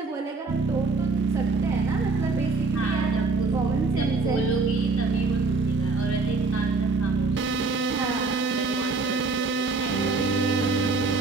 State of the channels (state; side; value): quieter; left; 3.9 dB